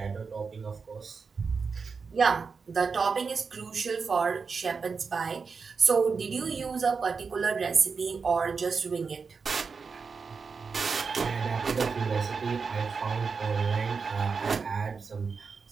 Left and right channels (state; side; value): quieter; left; 5.2 dB